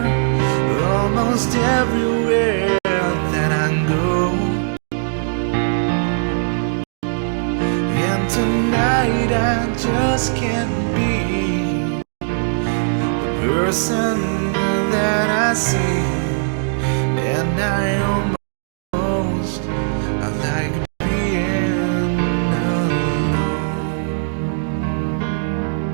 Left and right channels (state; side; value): silent; left; 66 dB below the other